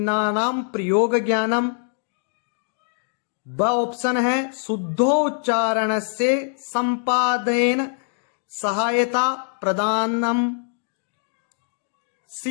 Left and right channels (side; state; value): right; silent; digital silence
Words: प्रयोग ज्ञानम। ब ऑप्शन है शुद्धोच्चारण से संपादन सहायता प्रदानम।